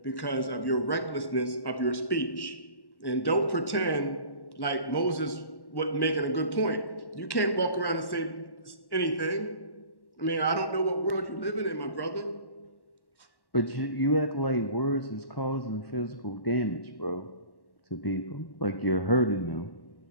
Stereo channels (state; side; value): late; right; 1.1 ms